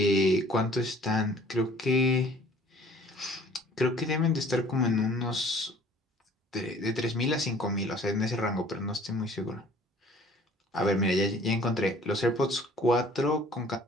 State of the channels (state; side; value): normal; both; correlation 0.53